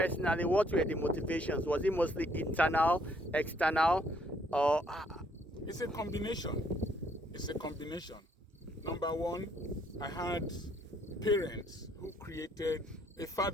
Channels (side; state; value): both; normal; correlation 0.67